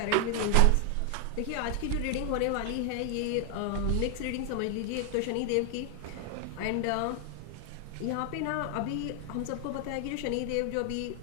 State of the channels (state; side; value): different; both; correlation 0.00